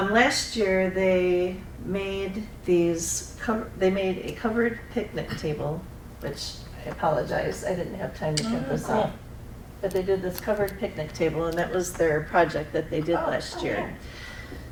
year they made they made a covered picnic table, which I apologize, I didn't have time to print this out. But they did this covered picnic table, and that was their project that they did last year.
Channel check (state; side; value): identical; both; correlation 1.00